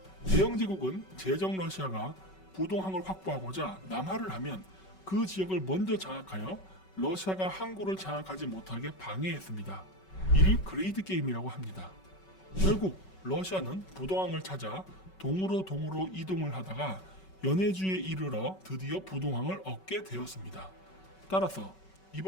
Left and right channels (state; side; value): late; right; 5.3 ms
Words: 대영 제국은 제정 러시아가 부동항을 확보하고자 남하를 하면 그 지역을 먼저 장악하여 러시아가 항구를 장악하지 못하게 방해했습니다. 이를 그레이드 게임이라고 합니다. 결국 러시아는 부동항을 찾아 동으로 이동을 하다가 연해주에 이르러 드디어 부동항을 얻게 되었습니다. 따라서